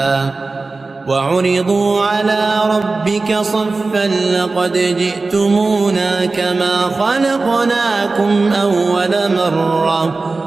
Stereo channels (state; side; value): quieter; left; 3.7 dB